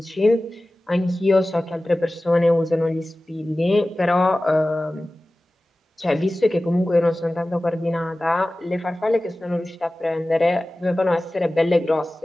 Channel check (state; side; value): normal; both; correlation 0.97